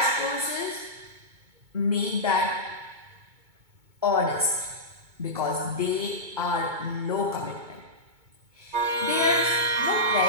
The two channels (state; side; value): late; left; 2.2 ms